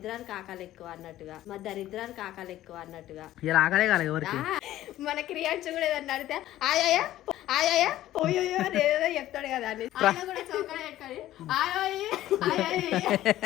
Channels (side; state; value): right; quieter; 14.1 dB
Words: ఆకలి ఎక్కువ అన్నట్టుగా, మా దరిద్రానికి ఆకలి ఎక్కువ అన్నట్టుగా. ఇలా ఆకలే కాలేదు ఎవరికి. మన క్రియాన్స్ కూడా ఏదన్నా అడిగితే ఆయాయా ఆయాయా పోయోయో అని ఏదో చెప్తాడు కదా అని కూడా చౌకగా పెట్టుకొని